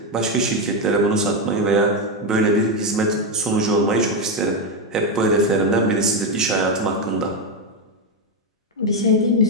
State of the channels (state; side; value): normal; both; correlation 0.08